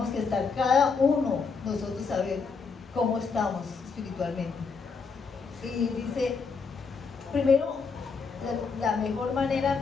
que estar cada uno, nosotros saber cómo estamos espiritualmente. Y dice, primero, la mejor manera,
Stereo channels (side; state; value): right; quieter; 5.1 dB